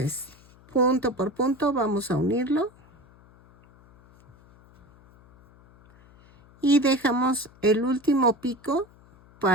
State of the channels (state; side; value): noise; left; hum, 27 dB below the sound